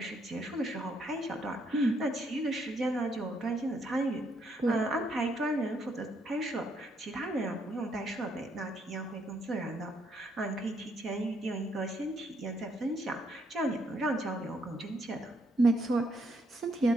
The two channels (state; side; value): normal; both; correlation 0.73